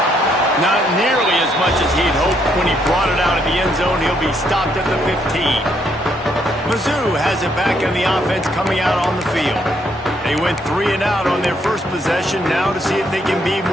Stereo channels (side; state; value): both; normal; correlation 0.72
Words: Not nearly as much as he'd hoped when he brought it out of the end zone. He'll be stopped at the 15. Mizzou has it back on the offense coming out on the field. They went 3 and out on their first possession, now to see if they can be